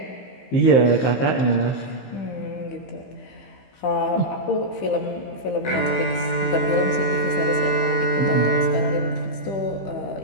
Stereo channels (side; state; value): right; late; 15 ms